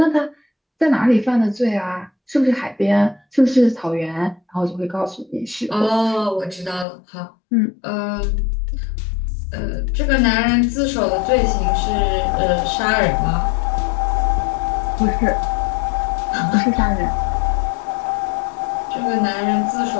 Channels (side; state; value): right; drops out; at 6.9 s